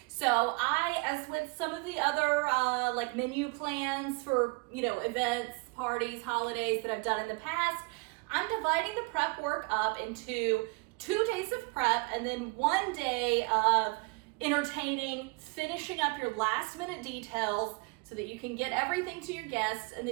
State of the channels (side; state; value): left; quieter; 28.8 dB